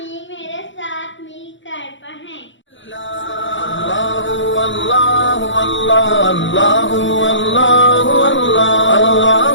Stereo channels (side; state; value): right; late; 0.55 ms